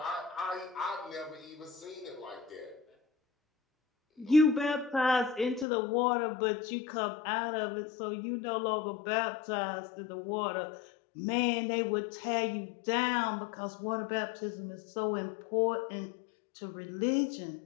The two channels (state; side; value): drops out; right; at 5.7 s